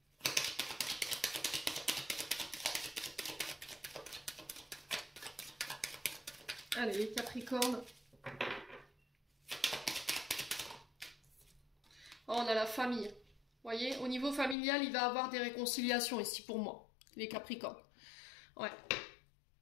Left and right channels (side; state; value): right; drops out; at 14.6 s